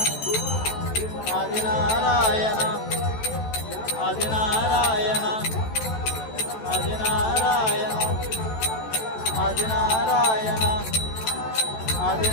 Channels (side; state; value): right; late; 14 ms